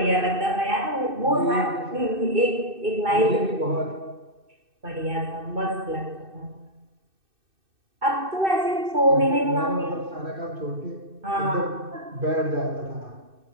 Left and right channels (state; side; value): late; left; 2.6 ms